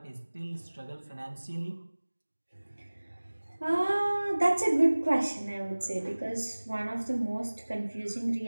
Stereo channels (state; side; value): inverted; both; correlation -1.00